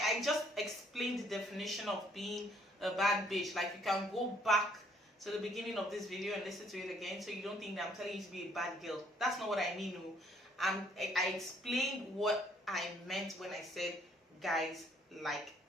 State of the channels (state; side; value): normal; both; correlation 0.64